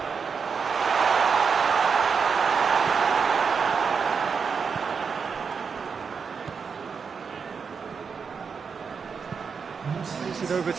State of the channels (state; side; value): quieter; left; 5.8 dB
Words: Plays it over